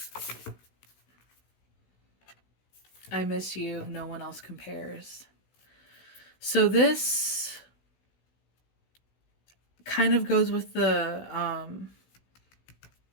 I miss you. No one else compares. So this kind of goes with the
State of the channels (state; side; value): late; right; 16 ms